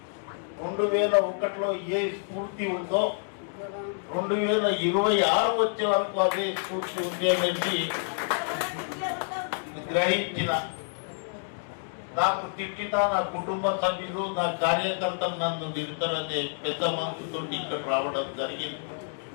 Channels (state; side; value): silent; right; digital silence